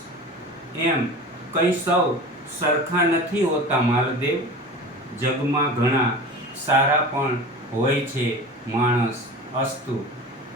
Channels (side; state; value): both; normal; correlation 0.35